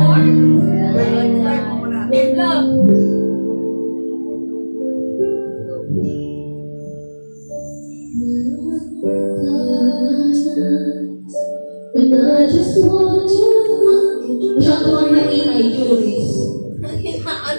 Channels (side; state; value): both; inverted; correlation -1.00